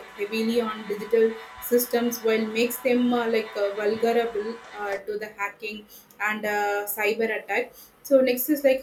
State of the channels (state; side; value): identical; both; correlation 1.00